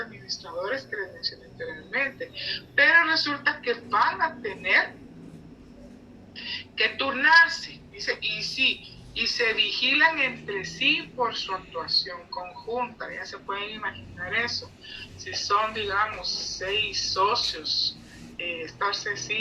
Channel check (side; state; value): both; identical; correlation 1.00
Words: que les mencioné anteriormente, pero resulta que van a tener que turnarse, dice, y se vigilan entre sí por su actuación conjunta. Ya se pueden imaginar eso. Si son, digamos, 6 socios, estarse